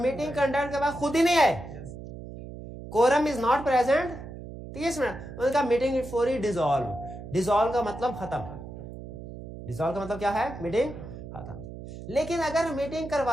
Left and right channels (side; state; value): right; noise; hum, 12 dB below the sound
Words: कंडक्ट के बाद खुद ही नहीं आए। Quorum is not present 30 minute, उनका meeting is for dissolve. Dissolve का मतलब खत्म, डिसॉल्व का मतलब क्या है? मीटिंग खत्म। लेकिन अगर मीटिंग